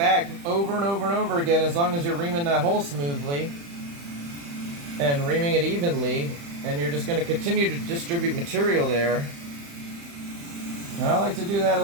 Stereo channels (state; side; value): late; left; 35 ms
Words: over and over and over again as long as you're reaming that hole smoothly and reaming it evenly, and you're just going to continue to distribute material there. And I like to do that a